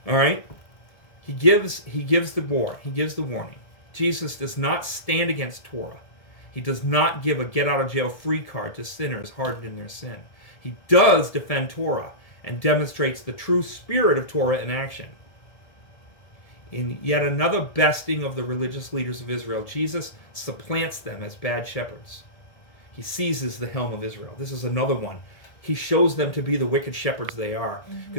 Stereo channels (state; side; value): late; right; 1.7 ms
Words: All right. He gives the warning. Jesus does not stand against Torah. He does not give a get-out-of-jail-free card to sinners hardened in their sin. He does defend Torah and demonstrates the true spirit of Torah in action. In yet another besting of the religious leaders of Israel, Jesus supplants them as bad shepherds. He seizes the helm of Israel. This is another one. He shows them to be the wicked shepherds they are,